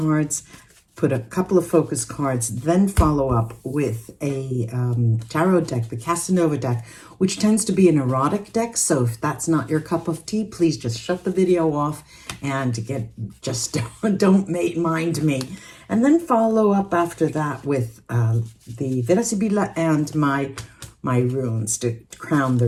put a couple of focus cards, then follow up with a tarot deck, the Casanova deck, which tends to be an erotic deck. So if that's not your cup of tea, please just shut the video off and don't mind me. And then follow up after that with the Vera Sibilla and my runes to crown the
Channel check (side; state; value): both; identical; correlation 1.00